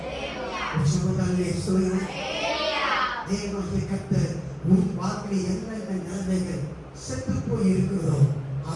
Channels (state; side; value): identical; both; correlation 1.00